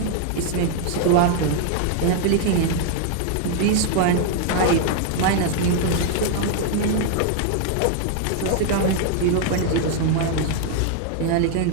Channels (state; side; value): different; both; correlation 0.00